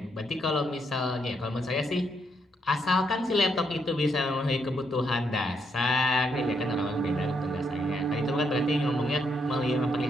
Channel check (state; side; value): normal; both; correlation 0.76